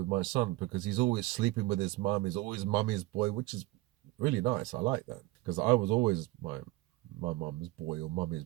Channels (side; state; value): left; quieter; 19.0 dB